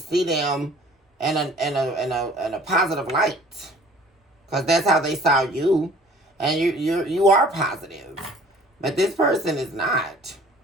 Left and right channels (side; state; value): both; normal; correlation 0.51